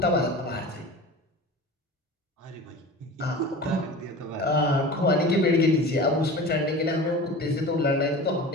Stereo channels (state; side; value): normal; both; correlation 0.35